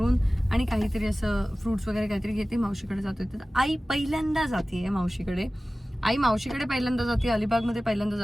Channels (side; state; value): both; normal; correlation 0.97